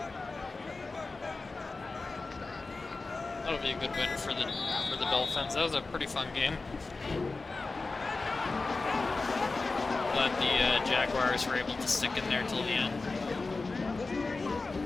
That'll be a good win for the Dolphins. That was a pretty fun game. Glad the Jaguars were able to stick in there till the end.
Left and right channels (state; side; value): quieter; right; 3.7 dB